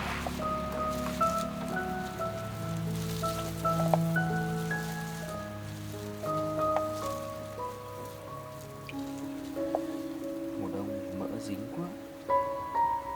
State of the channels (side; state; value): both; identical; correlation 1.00